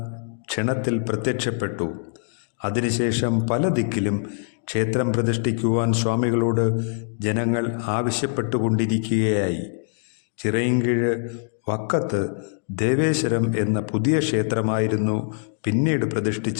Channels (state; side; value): silent; right; digital silence